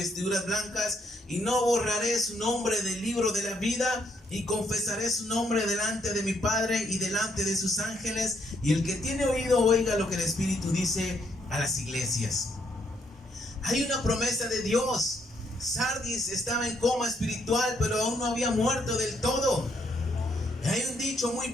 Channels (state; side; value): normal; both; correlation 0.73